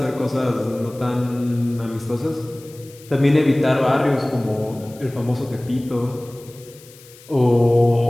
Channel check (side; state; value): left; noise; hiss, 23 dB below the sound